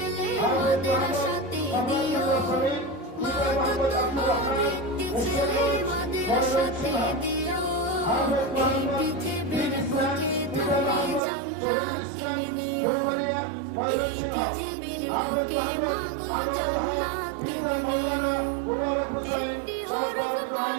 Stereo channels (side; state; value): left; drops out; at 11.2 s